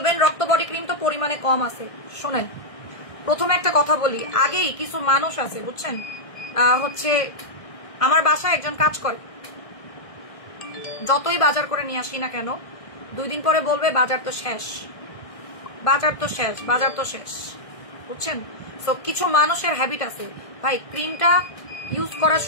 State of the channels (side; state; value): right; late; 1.6 ms